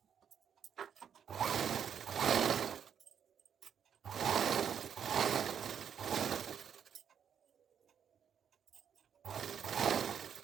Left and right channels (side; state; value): left; quieter; 8.1 dB